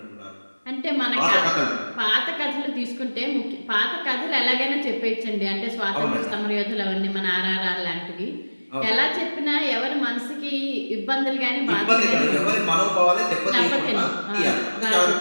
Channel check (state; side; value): inverted; both; correlation -1.00